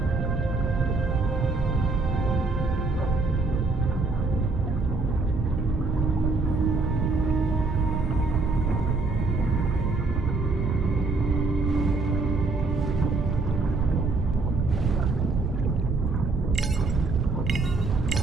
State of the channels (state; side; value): quieter; left; 3.6 dB